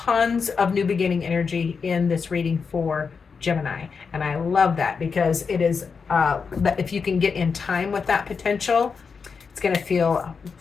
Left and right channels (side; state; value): right; quieter; 5.5 dB